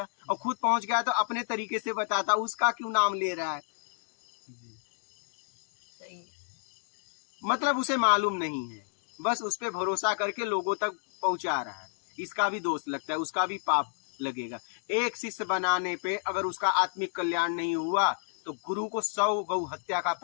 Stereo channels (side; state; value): right; silent; digital silence